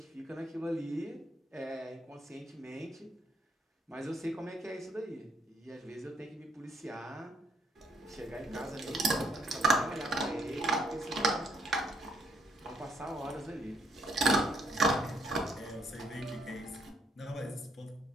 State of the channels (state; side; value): normal; both; correlation 0.69